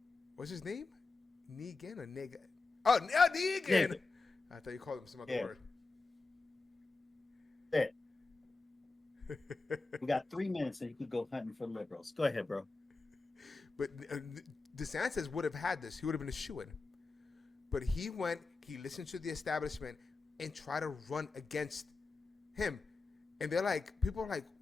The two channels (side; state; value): right; quieter; 3.8 dB